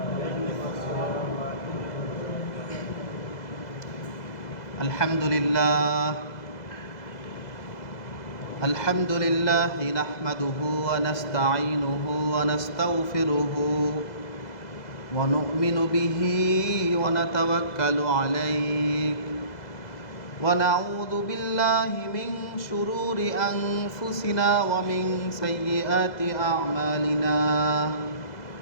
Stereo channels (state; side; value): late; right; 2.0 ms